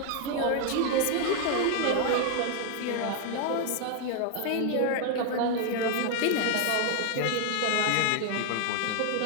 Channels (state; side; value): different; both; correlation 0.00